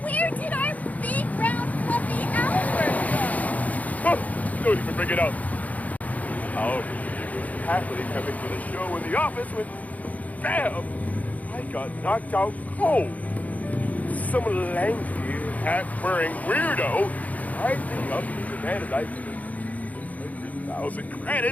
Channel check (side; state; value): right; late; 0.075 ms